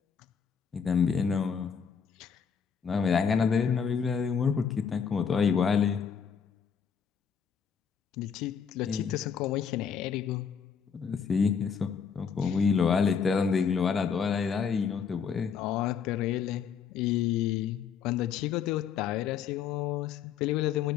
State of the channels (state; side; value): quieter; right; 6.8 dB